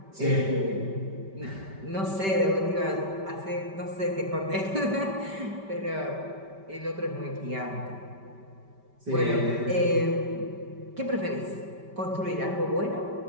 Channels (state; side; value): late; left; 5.1 ms